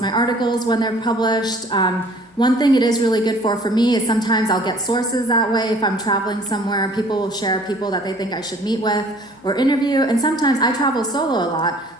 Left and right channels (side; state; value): both; normal; correlation 0.54